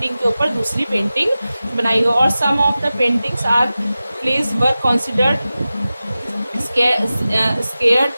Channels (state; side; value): inverted; both; correlation -0.95